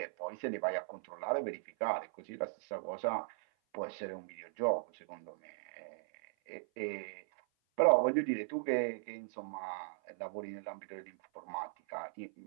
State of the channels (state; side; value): silent; left; 52 dB below the other